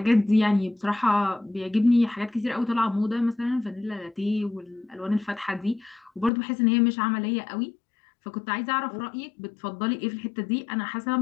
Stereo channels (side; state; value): right; drops out; at 6.3 s